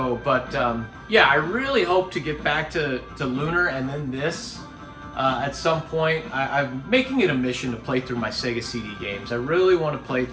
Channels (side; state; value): both; identical; correlation 1.00